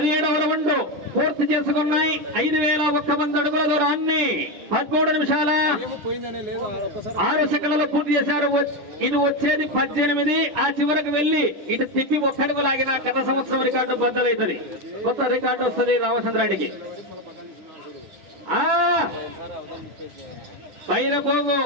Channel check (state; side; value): late; left; 10 ms